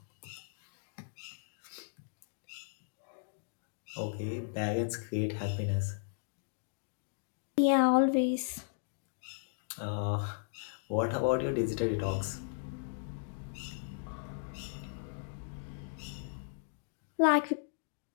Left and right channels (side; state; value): right; silent; digital silence